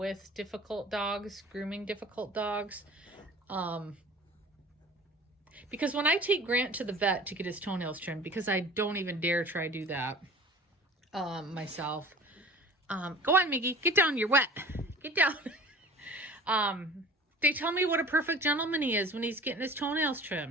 difficult dogs, grooming difficult dogs. Because when I take Grant to the vet to get his toenails trimmed, because I don't even dare try to do that myself. Go on, Miggy. Get down. You're wet. Get down. They tell me what a perfect gentleman he is when he's getting his toenails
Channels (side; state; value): both; normal; correlation 0.44